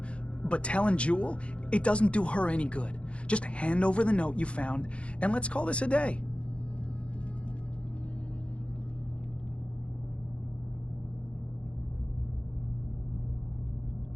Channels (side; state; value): right; late; 0.060 ms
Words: But telling Jewel, it doesn't do her any good. Just hand over the note you found, and let's call this a day.